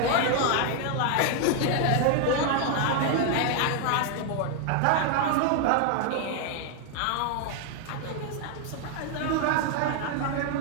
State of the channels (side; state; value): both; different; correlation 0.00